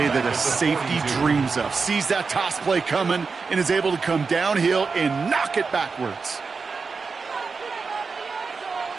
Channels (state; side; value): quieter; left; 4.8 dB